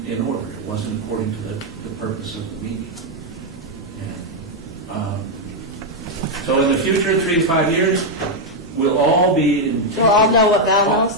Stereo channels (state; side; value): normal; both; correlation 0.00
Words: in order. It wasn't according to the purpose of the meeting. And, so in the future, 3 to 5 years, we'll all be in... We'll all know what Val